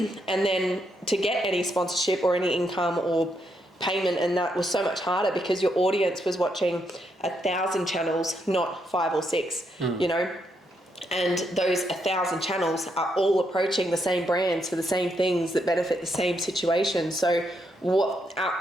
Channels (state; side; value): normal; both; correlation 0.78